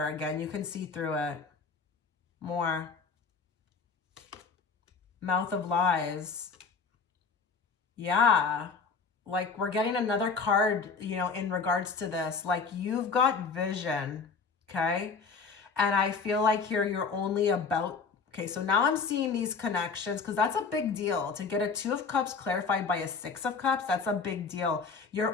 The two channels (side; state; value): right; quieter; 5.0 dB